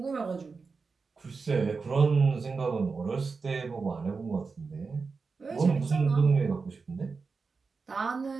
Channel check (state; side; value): quieter; left; 4.6 dB